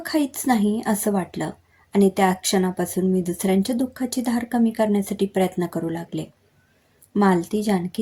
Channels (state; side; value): identical; both; correlation 1.00